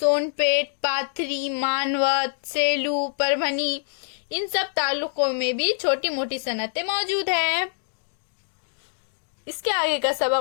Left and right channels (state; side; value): silent; right; digital silence